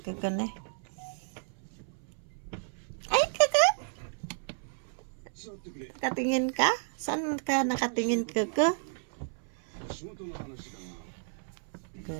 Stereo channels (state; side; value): silent; left; 56 dB below the other